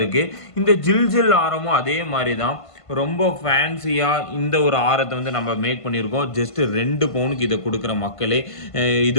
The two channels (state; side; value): late; right; 1.5 ms